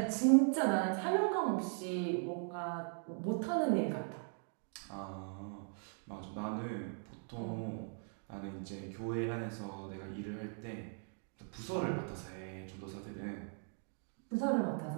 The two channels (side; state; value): left; silent; 52 dB below the other